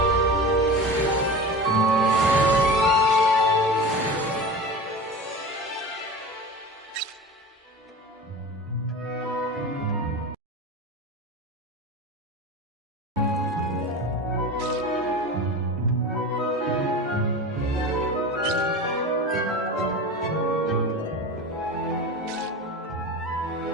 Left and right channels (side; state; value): both; normal; correlation 0.31